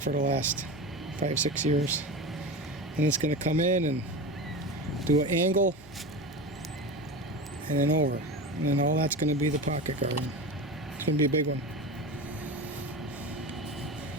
the last 5-6 years. And it's going to come in and do an angle and then over, and then all that's going to be the pocket garden. It's going to be a big one.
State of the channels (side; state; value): both; normal; correlation 0.26